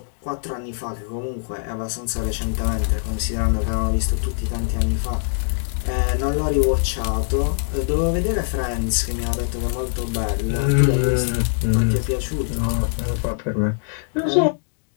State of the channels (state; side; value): silent; right; digital silence